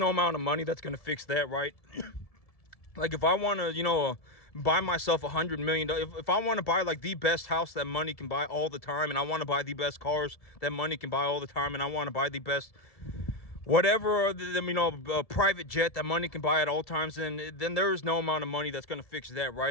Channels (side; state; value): right; late; 1.7 ms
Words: amount of money that's going to fix that, right? Like, if I want to, buy myself $100 million, if I want to buy like the best house that money can buy all the time, and I want to buy the best cars that money can buy all the time, and I want to buy the best whatever, a private jet that money can buy at all times, then there is no amount of money that's going to fix that,